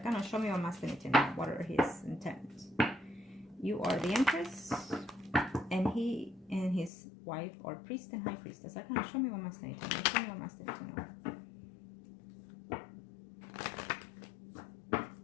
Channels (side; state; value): right; drops out; at 6.9 s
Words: gonna show me what masculinity now. What are his intents? You are the Empress, and he and his wife are priest and high priestess. I'm gonna show me what masculinity. Show me what masculinity now.